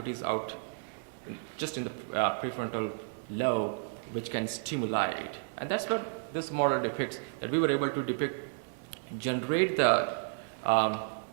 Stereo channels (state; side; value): silent; left; digital silence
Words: out just in the prefrontal lobe, which can stimulate? And that's what this model depicts, that we were able to generate the